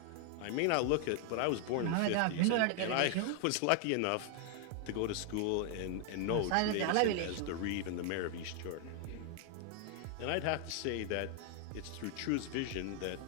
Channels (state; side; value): different; both; correlation 0.00